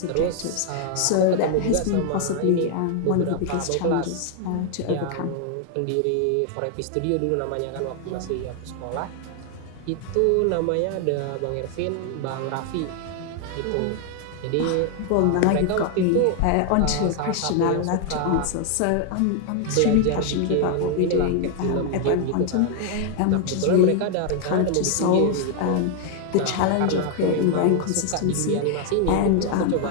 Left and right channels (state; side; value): different; both; correlation 0.00